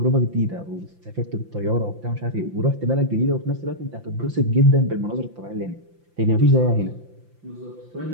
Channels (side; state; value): left; late; 5.8 ms